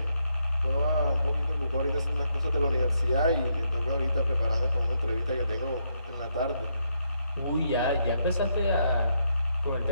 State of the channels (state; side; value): inverted; both; correlation -0.77